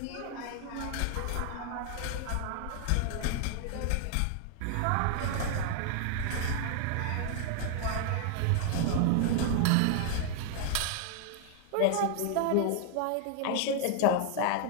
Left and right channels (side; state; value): both; different; correlation 0.00